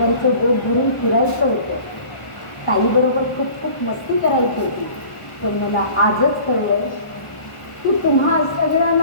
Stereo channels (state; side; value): late; right; 1.0 ms